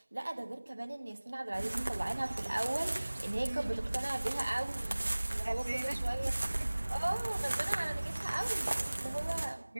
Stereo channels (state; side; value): inverted; both; correlation -1.00